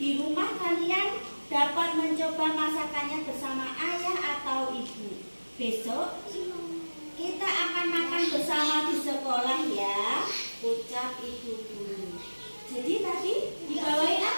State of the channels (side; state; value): both; inverted; correlation -1.00